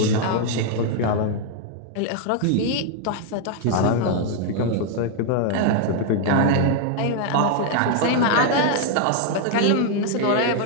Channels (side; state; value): both; different; correlation 0.00